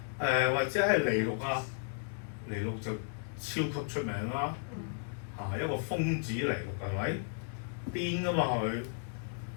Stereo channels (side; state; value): right; silent; digital silence